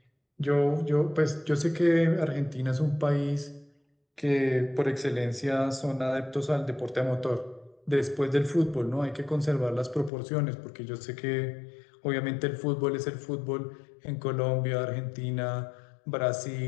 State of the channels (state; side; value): drops out; right; at 10.1 s